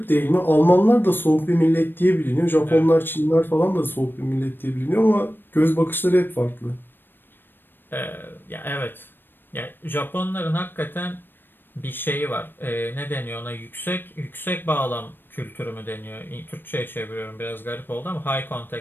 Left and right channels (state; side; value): late; right; 0.096 ms